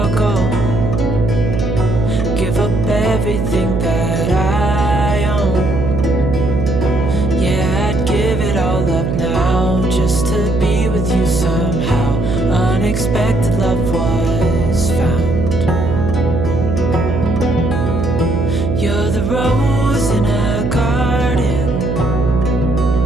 give up everything that I own. Yeah, I'd give it all up now just to be with you somehow. Unexpected love was found. You're the rose in a garden,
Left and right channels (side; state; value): right; noise; hum, 1 dB below the sound